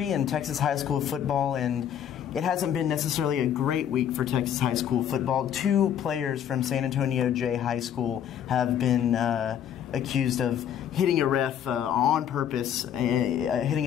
in Texas high school football, and it hasn't been necessarily a great week for Texas high school football. 2 players from San Antonio J High School have been accused of hitting a ref on purpose,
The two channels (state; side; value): quieter; right; 9.5 dB